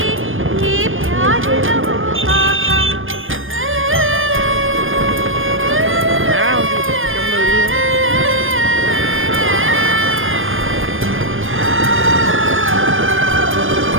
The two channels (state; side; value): late; left; 0.59 ms